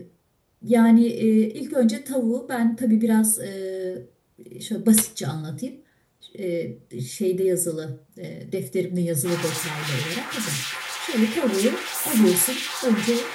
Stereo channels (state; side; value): identical; both; correlation 1.00